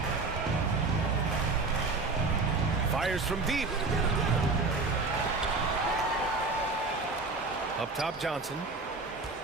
Fires from deep. Up top, Johnson.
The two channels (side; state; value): left; quieter; 3.7 dB